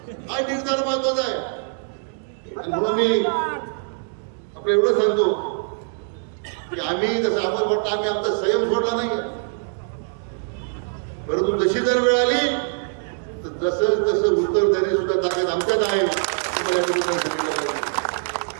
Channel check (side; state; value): left; silent; digital silence